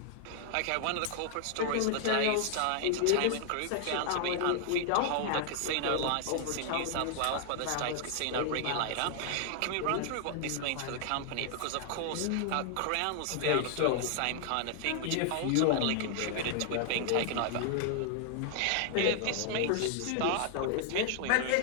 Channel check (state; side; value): different; both; correlation 0.00